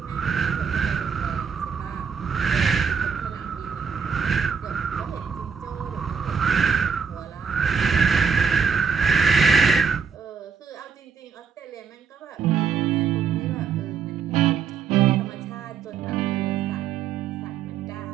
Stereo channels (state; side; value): quieter; left; 6.2 dB